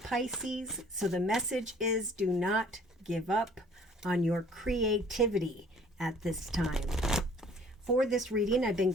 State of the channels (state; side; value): normal; both; correlation 0.55